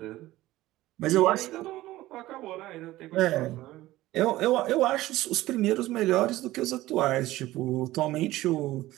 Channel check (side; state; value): left; quieter; 16.6 dB